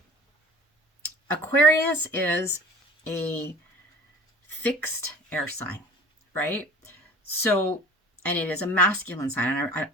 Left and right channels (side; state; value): both; normal; correlation 0.44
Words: Aquarius is a fixed air sign, right? So, and it is a masculine sign. And